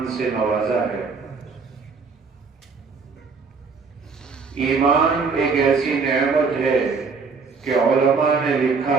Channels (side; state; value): left; quieter; 4.8 dB